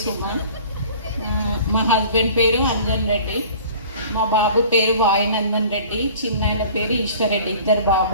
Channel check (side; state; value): both; inverted; correlation -0.46